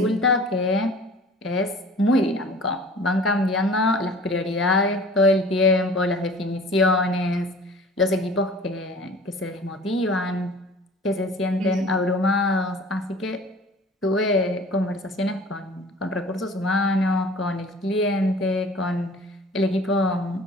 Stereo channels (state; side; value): normal; both; correlation 0.45